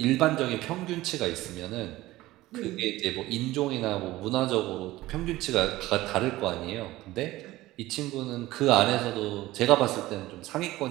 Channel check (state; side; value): quieter; left; 17.4 dB